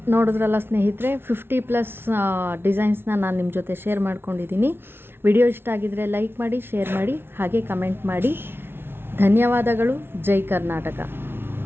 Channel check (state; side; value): late; left; 0.11 ms